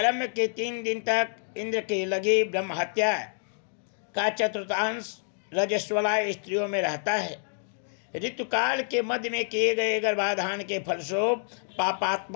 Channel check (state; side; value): silent; right; digital silence